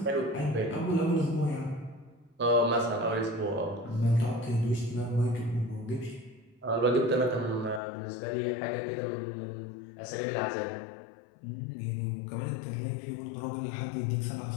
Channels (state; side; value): drops out; right; at 7.8 s